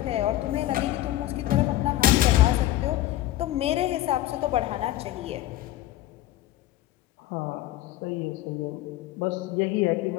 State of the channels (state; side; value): quieter; right; 14.7 dB